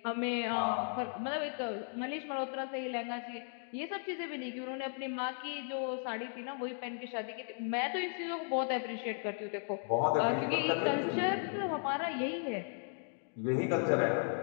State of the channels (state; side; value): silent; right; 54 dB below the other